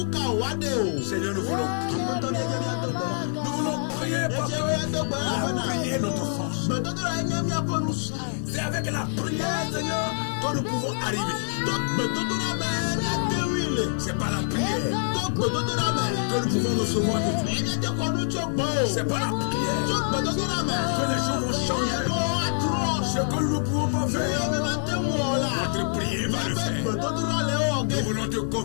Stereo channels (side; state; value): right; silent; digital silence